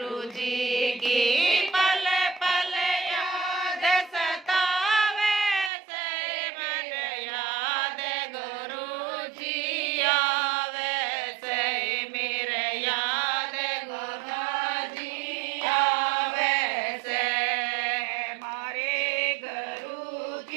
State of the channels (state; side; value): drops out; left; at 5.7 s